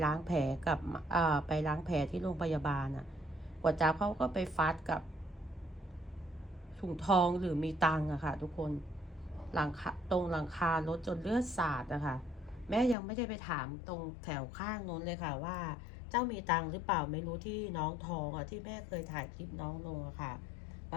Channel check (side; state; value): right; drops out; at 13.0 s